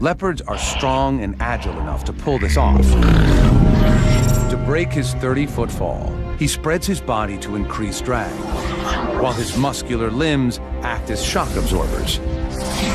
are strong and agile enough to pull this off. To break his 30-foot fall, he spreads his body to increase drag, while his muscular limbs act as shock absorbers.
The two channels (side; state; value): both; identical; correlation 1.00